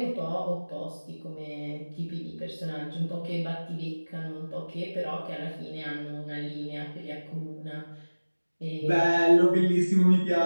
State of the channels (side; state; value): both; inverted; correlation -1.00